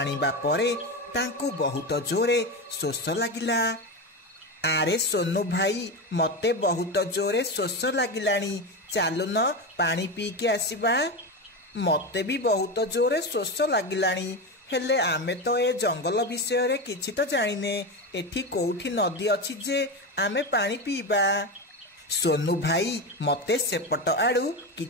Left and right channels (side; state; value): both; normal; correlation 0.18